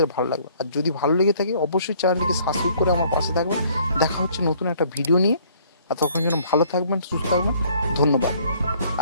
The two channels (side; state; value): both; inverted; correlation -0.59